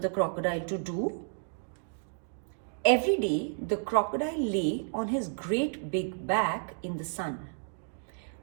the crocodile to do. Every day, the crocodile lay on his great big back in the sun,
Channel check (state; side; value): silent; left; digital silence